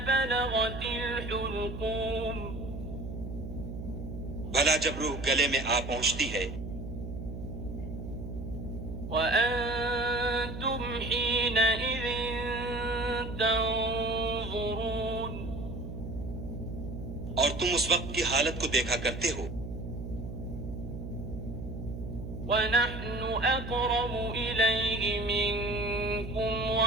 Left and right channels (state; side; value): noise; right; hum, 8 dB below the sound